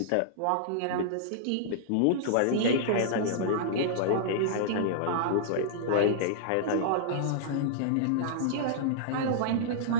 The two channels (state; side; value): different; both; correlation -0.02